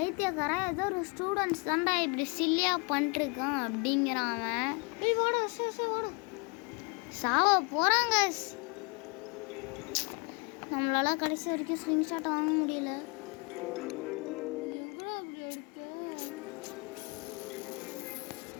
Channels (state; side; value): quieter; right; 32.1 dB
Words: ஏதோ ஒரு ஸ்டூடெண்ட்ஸ் தான்டா இப்படி சில்லியாக பண்ணிருக்கான் அப்படிங்கிறான் அவன். சாவ போகிறாங்க. நம்மளால கடைசி வரைக்கும் ஸ்க்ரீன்ஷாட் வாங்க முடியல.